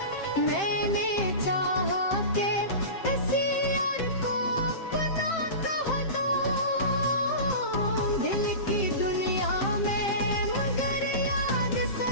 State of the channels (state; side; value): late; right; 7.6 ms